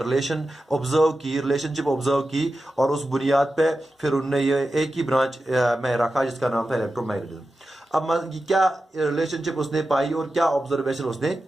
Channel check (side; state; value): both; normal; correlation 0.92